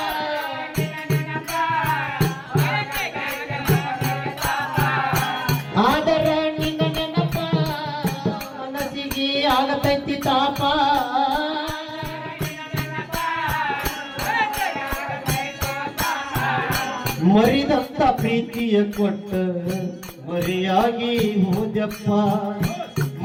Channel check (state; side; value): identical; both; correlation 1.00